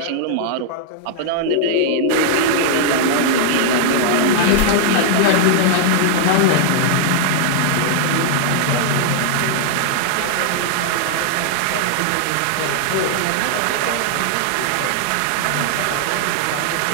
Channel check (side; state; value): both; different; correlation -0.01